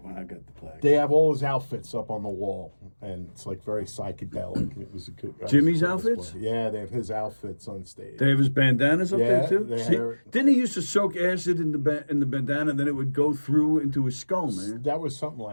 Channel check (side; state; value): both; inverted; correlation -1.00